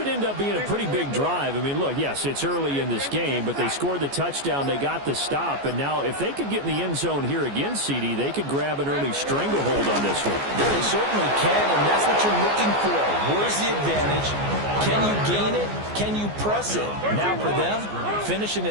end up being a pretty big drive. I mean, look, yes, it's early in this game, but they scored the touchdown. They got the stop. And now if they could get in the end zone here again, CD, they could grab an early stranglehold on this one. Yeah, they certainly can, and that's what you're looking for. Where's the advantage? Can you gain it? Can you press it? Now for them, finishing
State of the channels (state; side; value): late; left; 14 ms